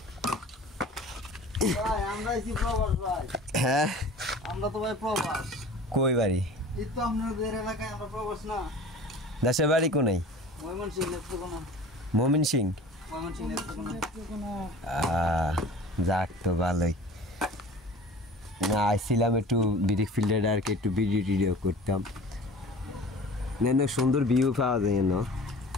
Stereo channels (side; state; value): both; normal; correlation 0.42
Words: হ্যাঁ আমরা তো ভাই প্রবাস। কই বাড়ি? এই তো আপনাদের এলাকায় আমরা প্রবাস না। দেশের বাড়ি কোনাই? ময়মনসিংহ নেত্রকোনা। ময়মনসিংহ? ময়মনসিংহ নেত্রকোনা। যাক তো ভালোই। না আইছিলাম একটু বিরিক ফিল্ডের আর কি একটু ভিডিও টিডিও করতাম। না সুন্দর ভিউ পাওয়া যায় না